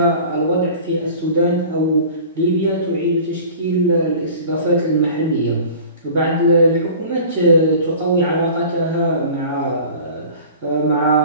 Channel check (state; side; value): inverted; both; correlation -0.42